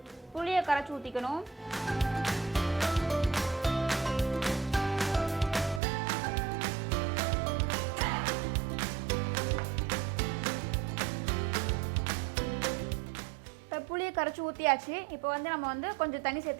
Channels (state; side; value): drops out; left; at 5.8 s